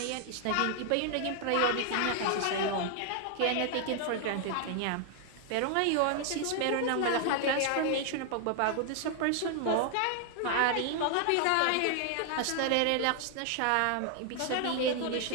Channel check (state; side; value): different; both; correlation 0.00